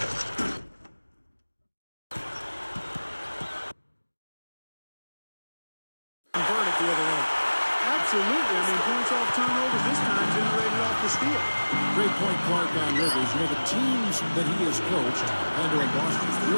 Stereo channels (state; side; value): inverted; both; correlation -1.00